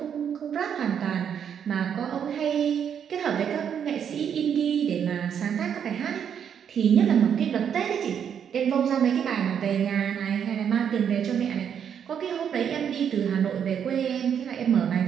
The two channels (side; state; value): left; quieter; 8.2 dB